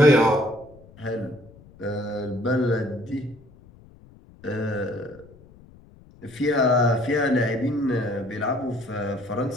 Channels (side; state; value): left; noise; rumble, 24 dB below the sound